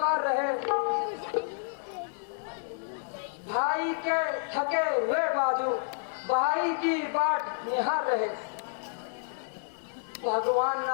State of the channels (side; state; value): right; silent; digital silence